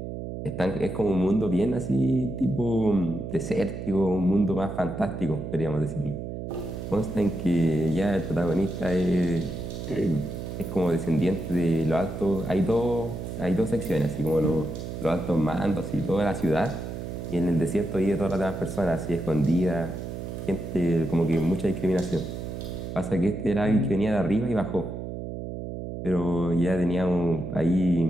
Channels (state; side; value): noise; right; hum, 7 dB below the sound